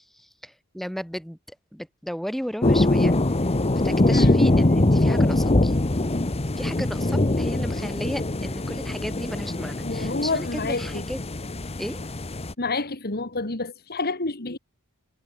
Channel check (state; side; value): normal; both; correlation 0.73